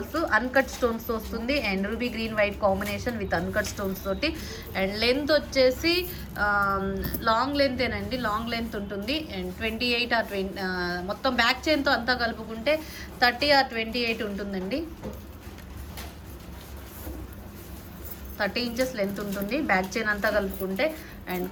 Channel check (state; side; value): identical; both; correlation 1.00